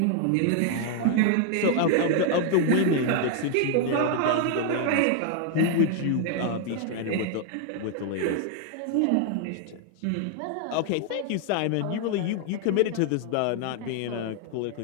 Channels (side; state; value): both; different; correlation 0.00